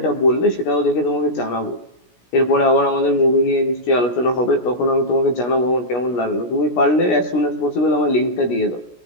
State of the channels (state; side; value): late; right; 17 ms